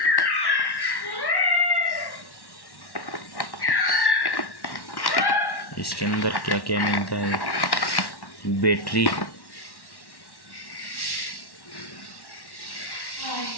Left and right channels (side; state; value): right; late; 1.1 ms